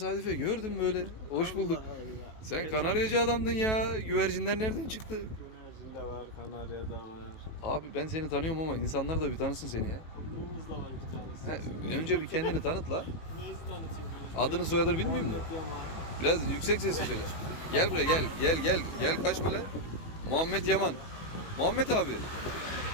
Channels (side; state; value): right; late; 18 ms